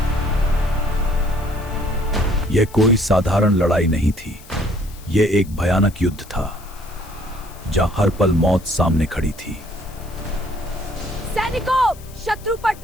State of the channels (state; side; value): noise; left; hiss, 22 dB below the sound